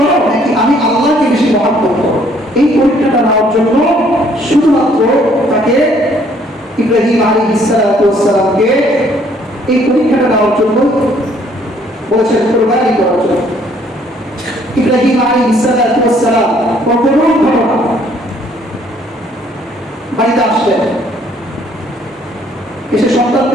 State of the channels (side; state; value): both; normal; correlation 0.63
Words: নাকি আমি আল্লাহকে বেশি মহব্বত করো, এই পরীক্ষাটা নেওয়ার জন্য শুধুমাত্র তাকে ইব্রাহিম আলাইহিস সালামকে এই পরীক্ষাটা নেওয়ার জন্য বলেছেন, কুরবানি করার জন্য। ইব্রাহিম আলাইহিস সালাম কখনো ঘটনা বাড়িতে আসলেন, এসে